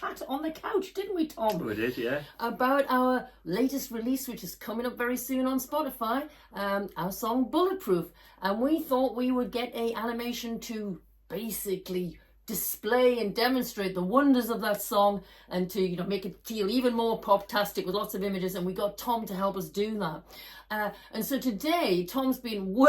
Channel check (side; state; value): both; identical; correlation 1.00